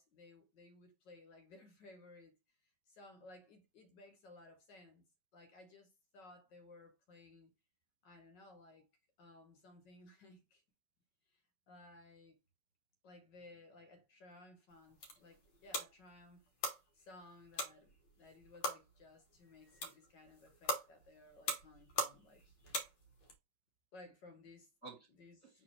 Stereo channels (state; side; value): late; right; 5.4 ms